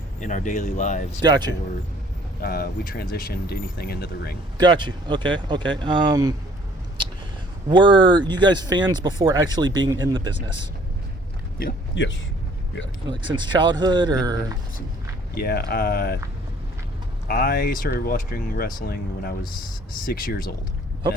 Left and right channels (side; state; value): both; normal; correlation 0.57